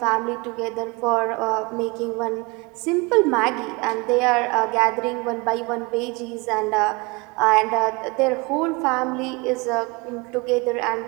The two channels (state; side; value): quieter; left; 26.5 dB